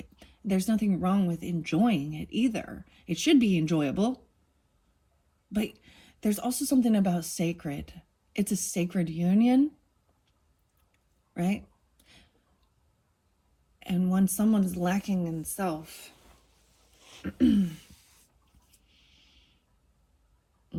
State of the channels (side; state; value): both; identical; correlation 1.00